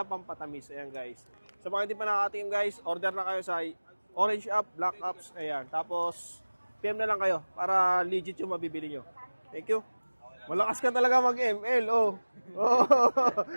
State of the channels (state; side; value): inverted; both; correlation -1.00